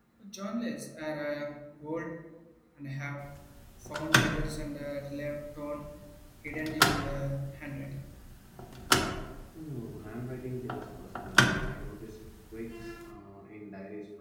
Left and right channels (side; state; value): both; identical; correlation 1.00